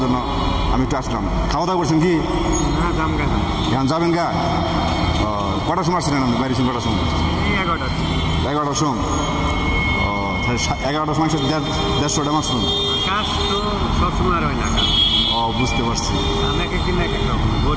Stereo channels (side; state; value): both; identical; correlation 1.00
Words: জন্য আমি একটু আসলাম। খাওয়া দাওয়া করছেন কি? এখন যাবেন গা? কটার সময় আসছিলেন আপনি? বাইরে ছিলেন কটার সময়? 11টার সময়। ও, 11টার সময় 150টা মাছ শুনুন। ও, বুঝতে পারছি। এক